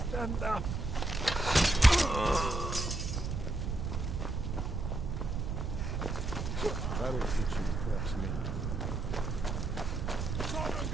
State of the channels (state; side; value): noise; right; rumble, 2 dB below the sound